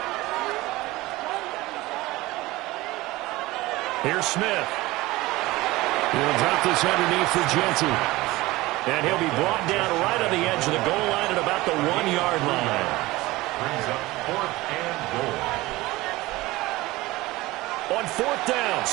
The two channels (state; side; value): quieter; left; 19.5 dB